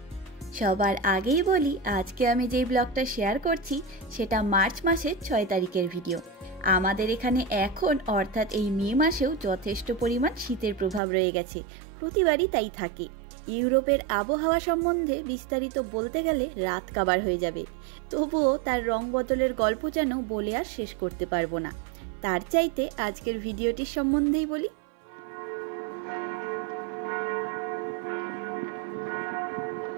সবার আগেই বলি, আজকে আমি যেই ব্লগটা শেয়ার করছি সেটা মার্চ মাসের 6 তারিখের ভিডিও। আমাদের এখানে এখন অর্থাৎ এই মে মাসেও যথেষ্ট পরিমাণ শীতের প্রভাব রয়ে গেছে, প্রতিবারই তাই থাকে। ইউরোপের আবহাওয়া সম্বন্ধে বিস্তারিত বলতে গেলে রাত কাবার হয়ে যাবে, তবুও তার রং বদলের গল্প যেন বলে আর শেষ করতে পারবো না। তার চাইতে আজকের ভিডিওটির সম্বন্ধেই বলি।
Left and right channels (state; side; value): drops out; left; at 11.0 s